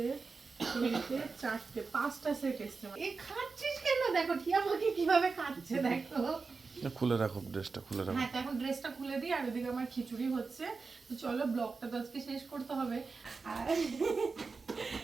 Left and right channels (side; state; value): left; quieter; 4.4 dB